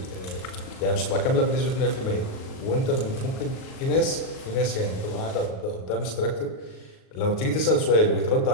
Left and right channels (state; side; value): late; right; 38 ms